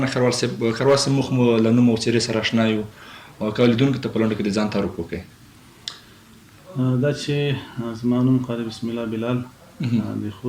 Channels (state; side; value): identical; both; correlation 1.00